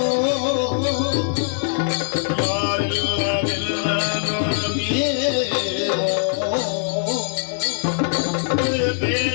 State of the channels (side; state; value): right; silent; digital silence